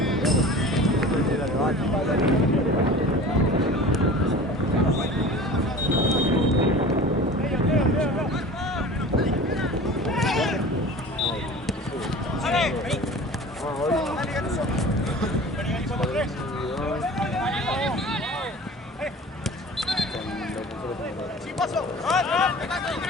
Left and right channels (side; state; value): both; normal; correlation 0.39